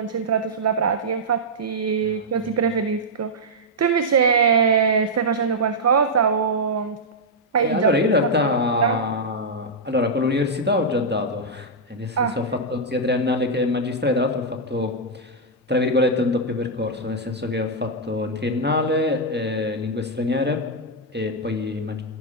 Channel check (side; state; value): both; normal; correlation -0.06